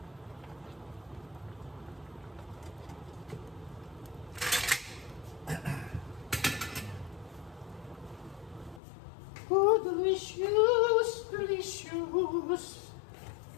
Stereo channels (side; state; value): right; drops out; at 8.8 s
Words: Oh, delicious! Delicious!